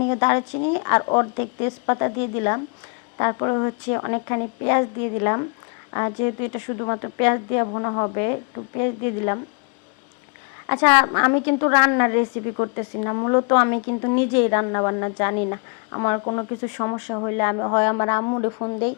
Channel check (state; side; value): quieter; right; 36.2 dB